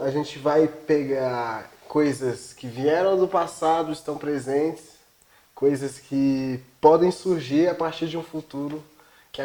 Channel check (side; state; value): both; identical; correlation 1.00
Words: a gente vai pegar coisas que vieram do passado, estão presentes, coisas que podem surgir a partir de um futuro que